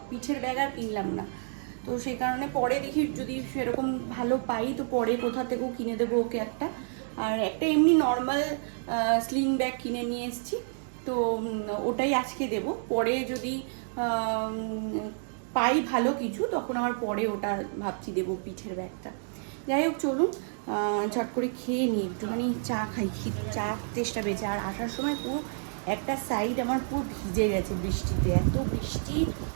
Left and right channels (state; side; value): silent; left; digital silence